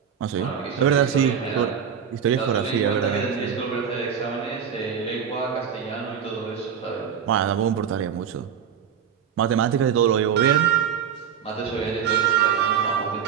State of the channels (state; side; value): quieter; left; 7.9 dB